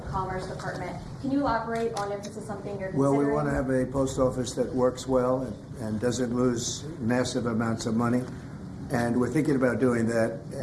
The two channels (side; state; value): both; identical; correlation 1.00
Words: Commerce Department. Can you elaborate on if this is something you're Well, considering? we want to have a post office that works well and doesn't lose massive amounts of money. And we're thinking about doing that,